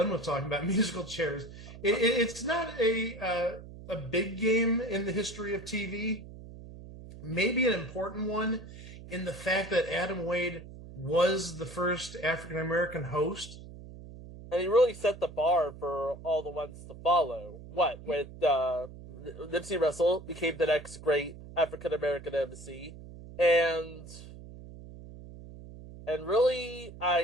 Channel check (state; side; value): noise; right; hum, 15 dB below the sound